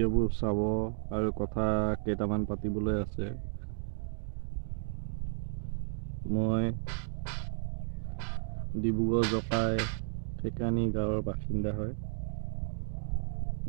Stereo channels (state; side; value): silent; left; digital silence